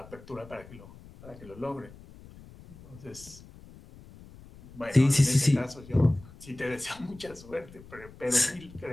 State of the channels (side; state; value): left; noise; rumble, 20 dB below the sound